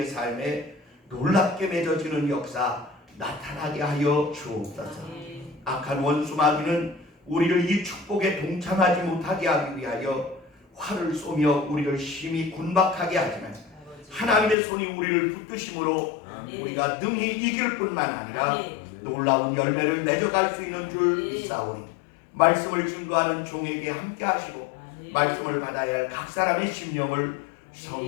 삶에 놀랍게 맺어지는 역사 나타나게 하여 주옵소서. 악한 원수 마귀는 우리를 이 축복에 동참하지 못하게 하기 위하여 활을 쏘며 우리를 심히 군박하게 하지만 하나님의 손이 우리를 붙드심으로 우리가 능히 이길 뿐만 아니라 놀라운 열매를 맺어갈 수 있는 줄 믿사오니 말씀을 증거하는 종에게 함께 하시고 말씀을 받아야 할 각 사람의 심령을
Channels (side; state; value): right; drops out; at 14.6 s